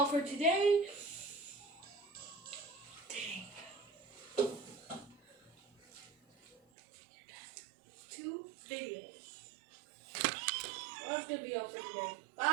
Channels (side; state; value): left; drops out; at 6.6 s